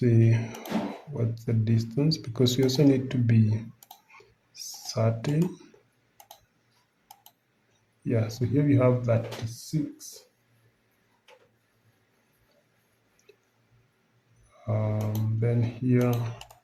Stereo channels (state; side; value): identical; both; correlation 1.00